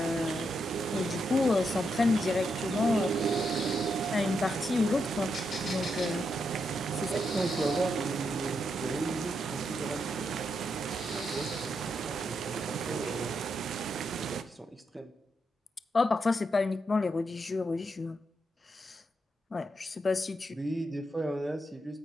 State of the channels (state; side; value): normal; both; correlation 0.82